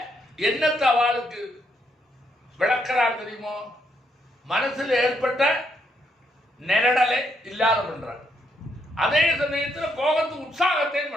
என்னத்த அவளுக்கு விளக்கிறார் தெரியுமோ? மனசுல ஏற்பட்ட நெரடலை இல்லாத பண்றான். அதே சமயத்தில் கோபத்துக்கு உற்சாகத்தையும்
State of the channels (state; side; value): normal; both; correlation 0.75